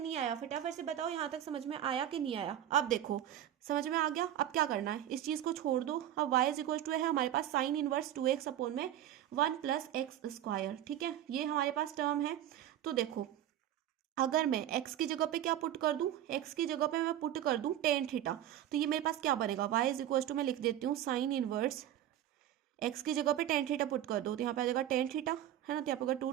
आया, फटाफट से बताओ यहाँ तक समझ में आया कि नहीं आया। अब देखो समझ में आ गया। अब क्या करना है, इस चीज को छोड़ दो। अब y इज इक्वल टू है हमारे पास साइन इनवर्स 2x अपॉन में 1 प्लस एक्स स्क्वायर, ठीक है। ये हमारे पास टर्म है। तो देखो अगर मैं x की जगह पे क्या पुट कर दूं, x की जगह पे मैं पुट कर दूं टेन थीटा, तो ये मेरे पास क्या बनेगा, y इज इक्वल टू मैं लिख देती हूँ साइन इनवर्स x की जगह पे टेन थीटा पुट कर दो तो यहाँ पे आ जाएगा टेन थीटा, है ना। तो यहाँ पे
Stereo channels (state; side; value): quieter; left; 11.8 dB